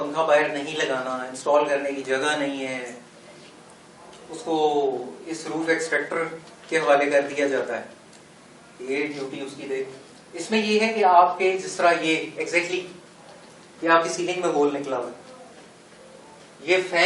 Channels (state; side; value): identical; both; correlation 1.00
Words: बाहर नहीं लगाना, इंस्टॉल करने की जगह नहीं है, उसको इस रूफ एक्सट्रैक्टर के हवाले कर दिया जाता है। ये ड्यूटी उसकी देख। इसमें ये है कि आपके जिस तरह ये एग्जैक्टली ये आपकी सीलिंग में होल निकला हुआ, ये